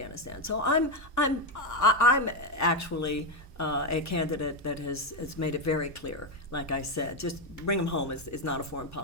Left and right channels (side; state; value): both; normal; correlation 0.08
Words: So I'm actually a candidate that has made it very clear, like I said, just bring them home is not a foreign